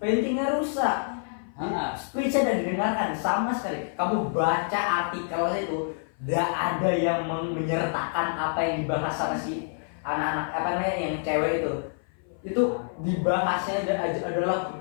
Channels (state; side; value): silent; right; 56 dB below the other